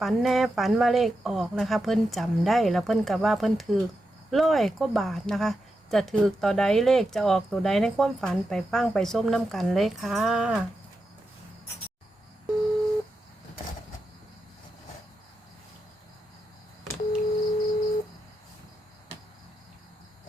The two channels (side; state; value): both; normal; correlation 0.87